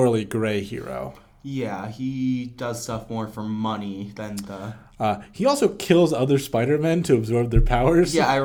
gray hero. Yeah, he does stuff more for money than the... He also kills other Spider-Men to absorb their powers. Yeah, I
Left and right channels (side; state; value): both; identical; correlation 1.00